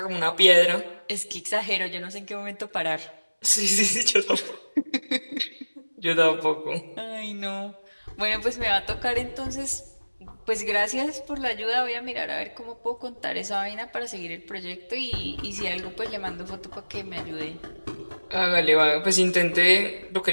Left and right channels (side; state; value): both; inverted; correlation -1.00